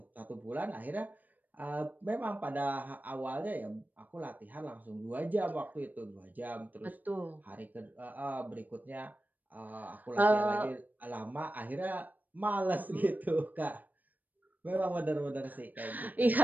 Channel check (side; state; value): left; late; 0.084 ms